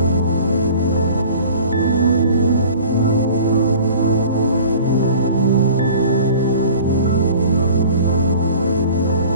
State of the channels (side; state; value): both; inverted; correlation -0.45